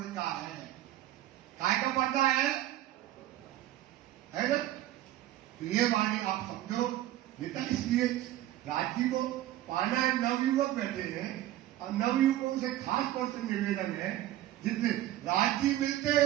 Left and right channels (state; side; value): quieter; left; 14.0 dB